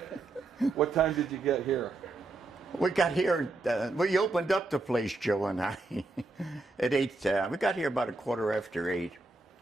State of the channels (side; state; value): left; quieter; 3.2 dB